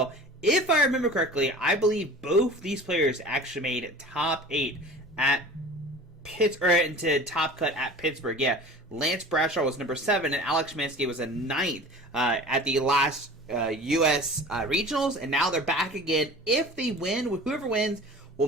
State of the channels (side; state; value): both; normal; correlation 0.40